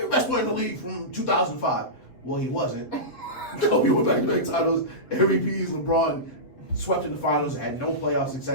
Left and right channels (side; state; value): right; late; 7.8 ms